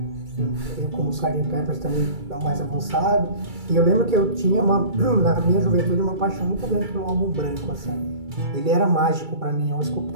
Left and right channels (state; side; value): late; left; 2.3 ms